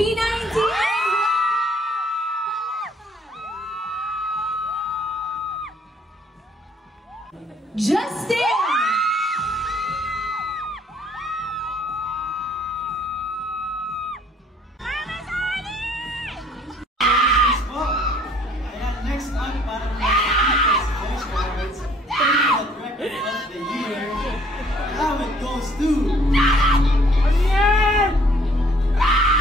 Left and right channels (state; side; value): normal; both; correlation 0.60